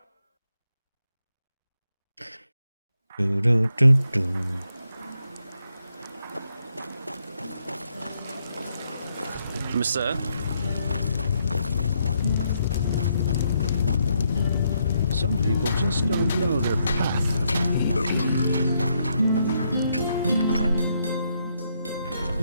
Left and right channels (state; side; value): inverted; both; correlation -0.77